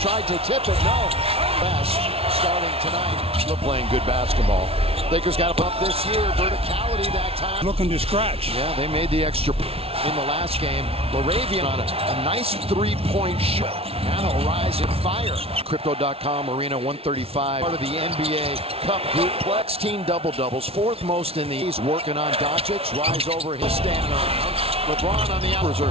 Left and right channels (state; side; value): late; left; 0.28 ms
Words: tried to tip it. No. Best starting tonight. Still playing good basketball. Lakers got a bump this year. Verticality that time. Looking to scratch. Yeah, they made the extra in the last game. LaRavia on a nice three-point shot. Now they'll rise and fire. Crypto.com Arena 135. Part of the NBA Cup group. Plex team double-doubles. Fourth most in the East. Working on Doncic. Rise over his standing around. LeBron on the hours are